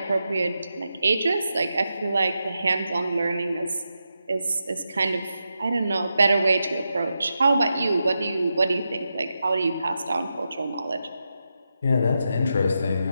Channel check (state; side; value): inverted; both; correlation -0.87